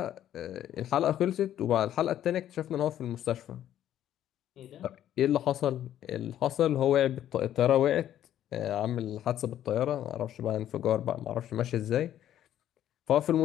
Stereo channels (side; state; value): right; quieter; 11.5 dB